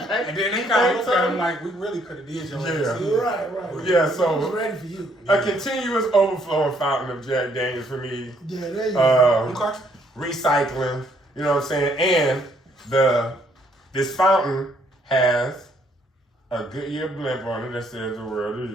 then they kind of looked at him like, "We really could have did your ass." Yeah. Right. Yeah, He so was ready for you. a continuous overflowing fountain of Jack Daniels for me. Yeah, there you go. Okay. Recycling, you know what I'm saying? And this fountain has a Goodyear blimp on it that says "The world is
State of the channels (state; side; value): normal; both; correlation 0.68